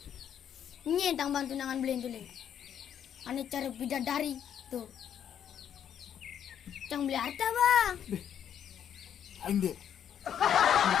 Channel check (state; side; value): quieter; right; 9.2 dB